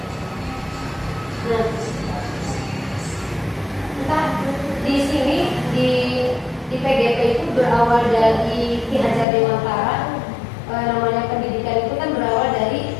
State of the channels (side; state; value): right; drops out; at 9.2 s